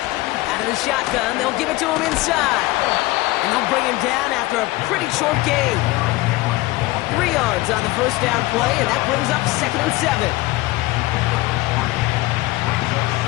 Out of the shotgun, they'll give it to him inside. And they'll bring him down after a pretty short gain. 3 yards on the first down play, and that brings up 2nd and 7.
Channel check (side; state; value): right; quieter; 19.6 dB